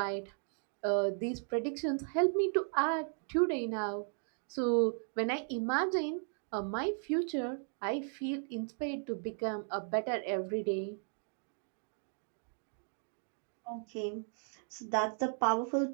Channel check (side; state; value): left; silent; 54 dB below the other